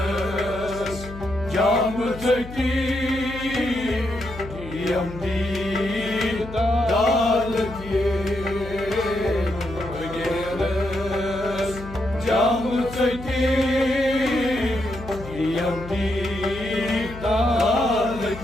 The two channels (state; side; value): noise; left; hum, 13 dB below the sound